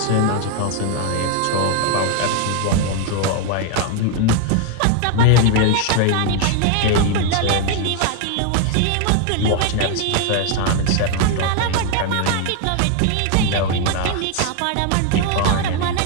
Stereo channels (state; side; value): different; both; correlation 0.01